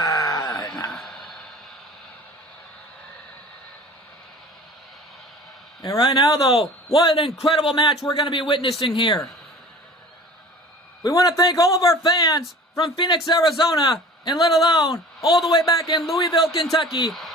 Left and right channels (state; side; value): normal; both; correlation 0.43